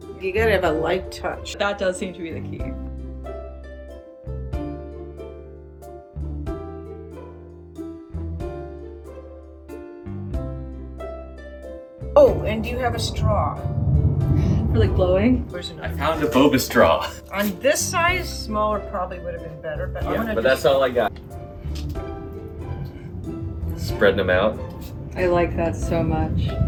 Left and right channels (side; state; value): both; identical; correlation 1.00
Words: You gotta have a light touch. That does seem to be the key. Oh, and do you have a straw? For like blowing? Where's I another? found a boba straw. On this size, smaller probably would have been better, but I'm gonna but that's all I got. Spreading them out. I like that so much.